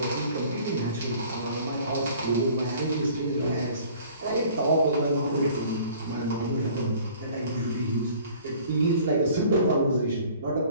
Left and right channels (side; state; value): both; inverted; correlation -0.51